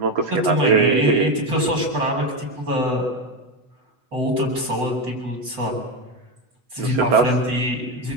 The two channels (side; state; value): left; late; 8.0 ms